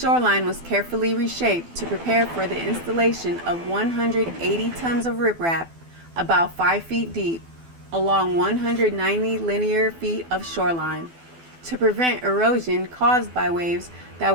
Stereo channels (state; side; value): late; left; 12 ms